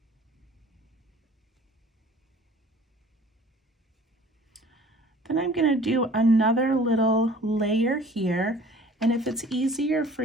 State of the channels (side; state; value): both; normal; correlation 0.49